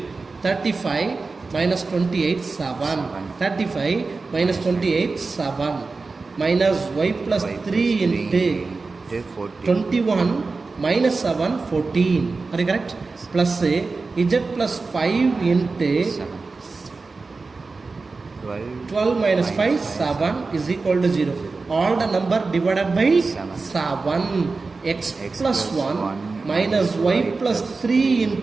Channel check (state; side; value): quieter; left; 4.0 dB